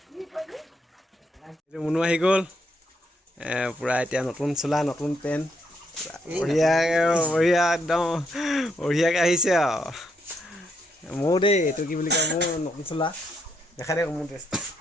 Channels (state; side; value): normal; both; correlation 0.76